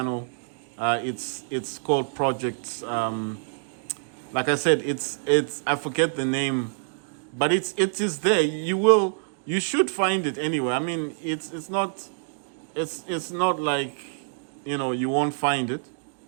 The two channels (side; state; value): left; silent; digital silence